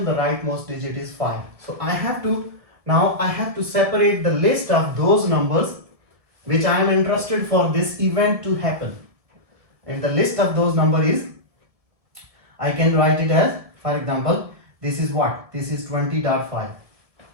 the rightmost digit is 5. So I have to separate the list of those numbers which I am interested for this event to happen. And the list of those numbers is, I can write it as, for example, this is what? This is 20.5.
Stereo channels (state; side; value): late; left; 1.7 ms